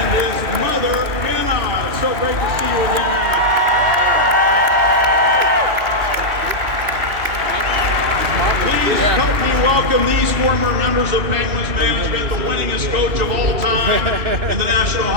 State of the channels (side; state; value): left; late; 2.6 ms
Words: his mother, Anna. So great to see you again, Anna. Please help me welcome these former members of Penguins management, the winningest coach of all time in the National